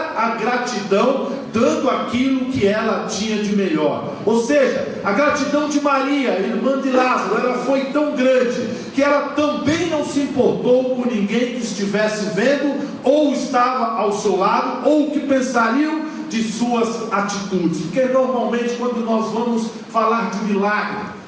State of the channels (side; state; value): both; identical; correlation 1.00